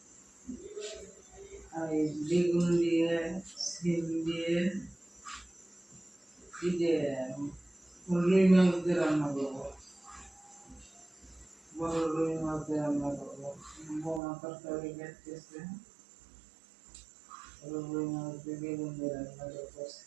আর এই বেগুন দিয়ে সিম দিয়ে রুই মাছ দিয়ে রান্না করবো। বড় রুই মাছ দিয়ে রান্না করবো। বৌমা তরকারি কাটতেছে, রুই মাছ দিয়ে বেগুন দিয়ে রান্না করবো।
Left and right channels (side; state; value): left; drops out; at 14.2 s